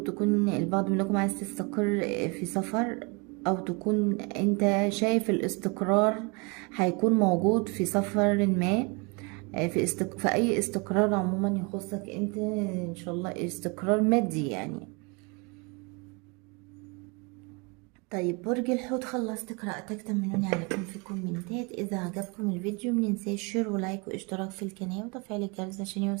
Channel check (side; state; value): left; quieter; 30.4 dB